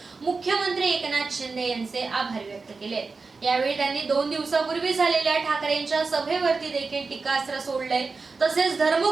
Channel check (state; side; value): quieter; left; 4.3 dB